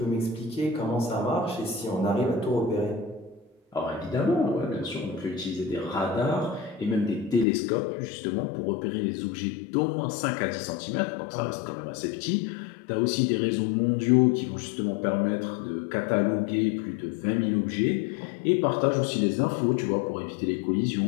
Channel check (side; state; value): right; drops out; at 7.5 s